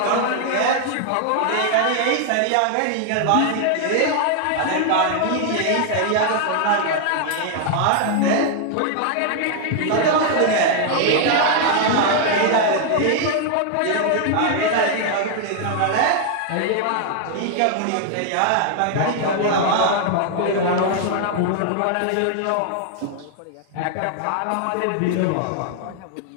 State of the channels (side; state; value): both; different; correlation 0.00